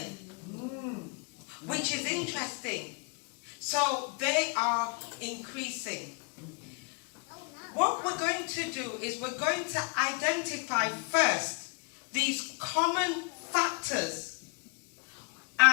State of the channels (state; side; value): quieter; right; 34.2 dB